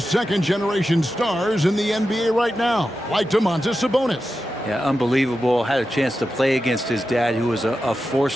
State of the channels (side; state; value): both; normal; correlation 0.91